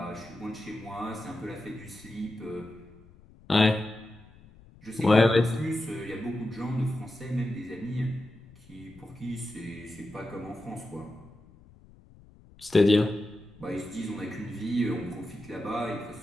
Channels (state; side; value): noise; left; rumble, 24 dB below the sound